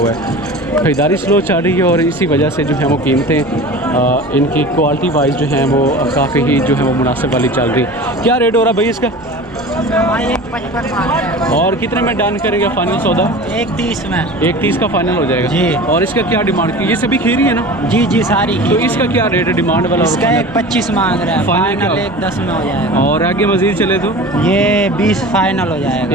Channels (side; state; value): both; normal; correlation 0.36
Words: है, ख़रीदारी स्लो चल रही है, और इसी वजह से जो है वो कीमतें इनकी क्वालिटी वाइज जो हैं वो काफ़ी ही जो है वो मुनासिब वाली चल रही। क्या रेट हो रहा भाई इसका? 1.55 और कितने में डन करेंगे फाइनल सौदा? 1.30 में। 1.30 का फाइनल हो जाएगा जी। और इसका क्या डिमांड की? ये सभी खीरी है ना? जी जी सारी तो इसका क्या रेट है डिमांड वाला? और इसका final? 1.25 मांग रहा है, फाइनल फाइनल क्या? 1.10 में हो जाएगा। और आगे मज़ीद चले तो ये 20 फाइनल हो